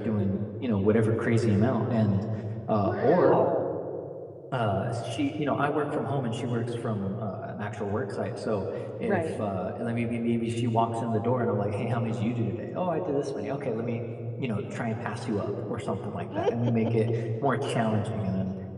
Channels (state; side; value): identical; both; correlation 1.00